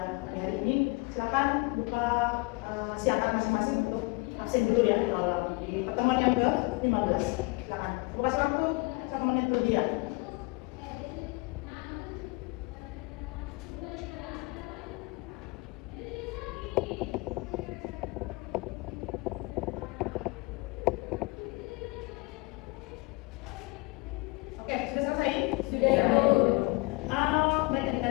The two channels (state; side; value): quieter; right; 25.5 dB